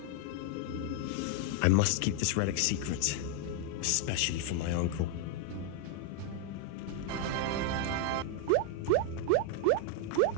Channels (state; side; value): different; both; correlation 0.01